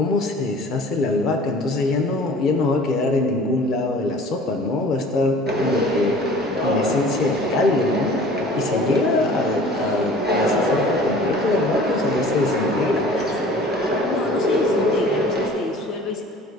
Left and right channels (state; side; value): normal; both; correlation 0.46